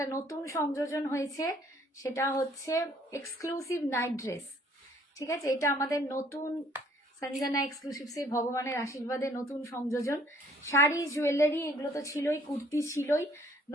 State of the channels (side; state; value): both; normal; correlation 0.60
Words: নতুন সংযোজন হয়েছে, সেটা হচ্ছে এক্সক্লুসিভ নাইট ড্রেস, ঠিক আছে? এটা আমাদের নতুন সঞ্জনা এক্সক্লুসিভসের ভগবানের আশীর্বাদে নতুন সংযোজন, শাড়ি জুয়েলারি এগুলো তো ছিলই, কুর্তি ছিলই,